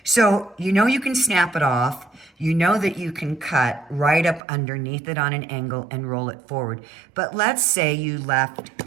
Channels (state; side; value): drops out; left; at 4.4 s